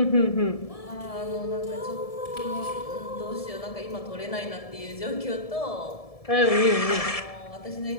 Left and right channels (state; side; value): late; right; 1.7 ms